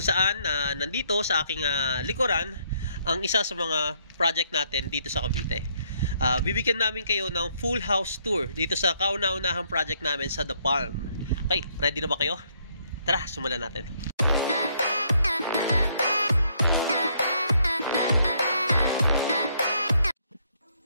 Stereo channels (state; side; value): inverted; both; correlation -0.70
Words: saan nandito sa aking likuran ang isa sa mga project natin dito sa Cavite. Bibigyan namin kayo ng full house tour dito sa kauna-unahang project namin sa The Palm. Okay, ready na ba kayo? Tara, simulan natin.